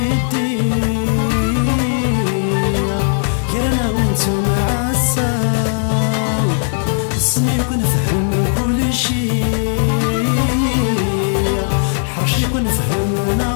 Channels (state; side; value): silent; right; digital silence